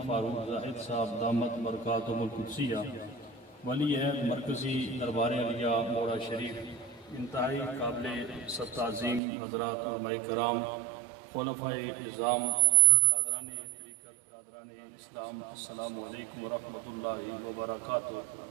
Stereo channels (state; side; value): drops out; left; at 9.2 s